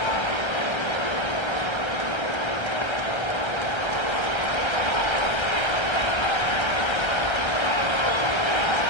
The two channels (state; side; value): late; right; 1.3 ms